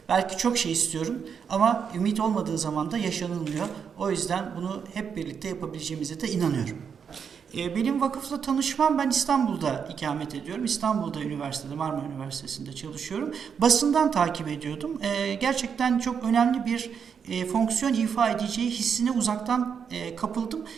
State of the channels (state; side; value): quieter; left; 6.9 dB